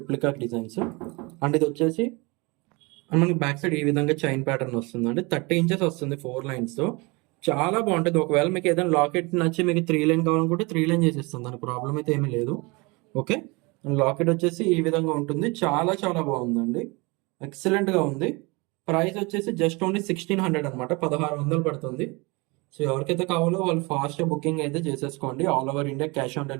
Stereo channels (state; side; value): quieter; left; 26.7 dB